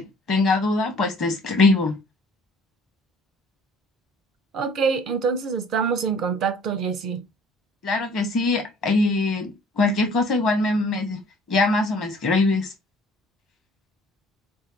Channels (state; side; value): normal; both; correlation 0.54